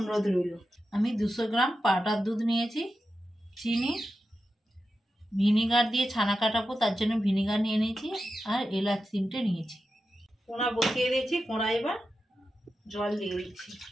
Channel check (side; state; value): both; normal; correlation 0.90